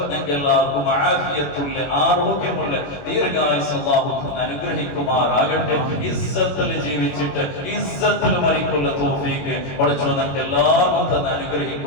ഞങ്ങൾക്ക് എല്ലാവർക്കും ആഫിയത്തുള്ള ആരോഗ്യമുള്ള ദീർഘായുസ്സ് അല്ലാഹു അനുഗ്രഹിക്കുമാറാകട്ടെ. ഇസ്സത്തിൽ ജീവിച്ചിട്ട് ഇസ്സത്തിൽ മരിക്കുള്ള തൗഫീഖ് പഠിച്ചു ഞങ്ങൾക്ക് എല്ലാവർക്കും തന്നെ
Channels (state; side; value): late; right; 21 ms